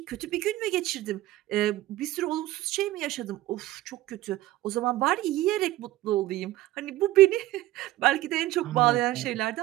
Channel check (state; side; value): quieter; left; 16.1 dB